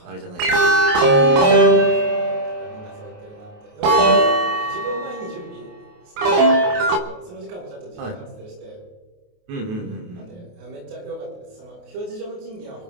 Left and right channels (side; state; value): left; late; 28 ms